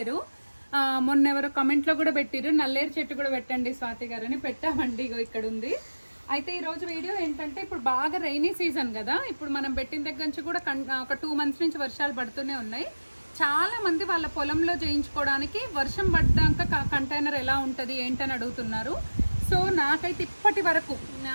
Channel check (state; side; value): inverted; both; correlation -1.00